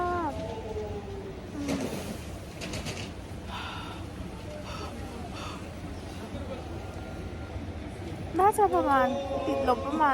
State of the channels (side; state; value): both; identical; correlation 1.00